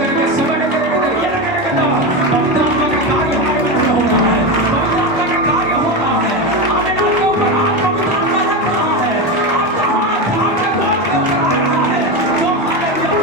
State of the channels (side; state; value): both; normal; correlation 0.16